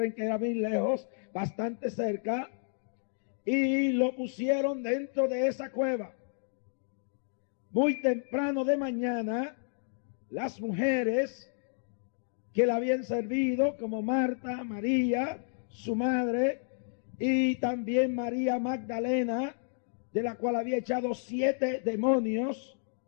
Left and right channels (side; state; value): right; silent; digital silence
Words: que era muy lejos, bastante cerca, y lo pusieron dentro de esa cueva. Muy temprano de mañana, las mujeres que la habían servido, como Marta, María, su madre, y también María Magdalena, de la cual había echado 7 demonios